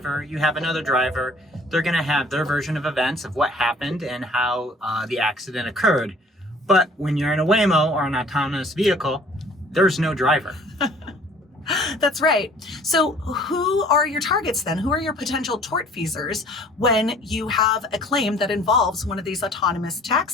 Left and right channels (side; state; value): both; normal; correlation 0.53